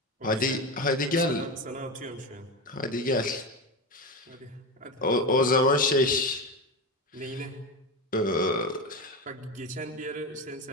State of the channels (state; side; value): normal; both; correlation 0.20